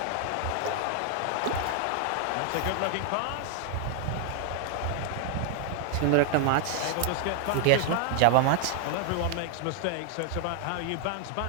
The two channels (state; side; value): different; both; correlation 0.00